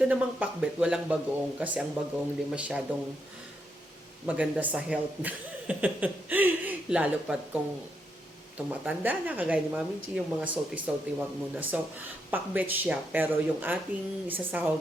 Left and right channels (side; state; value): both; normal; correlation 0.80